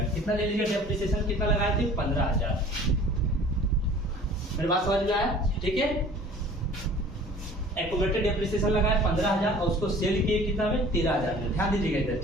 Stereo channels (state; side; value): normal; both; correlation 0.48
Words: कितना ले लीजिएगा, डेप्रिसिएशन कितना लगाए थे, 15,000। मेरी बात समझ में आया, ठीक है। एक्यूमुलेटेड डेप्रिसिएशन लगाए 15,000 और उसको सेल किए कितना में, 13,000 में, ध्यान दीजिएगा इधर,